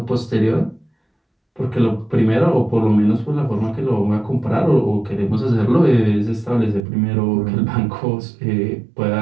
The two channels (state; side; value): drops out; left; at 6.8 s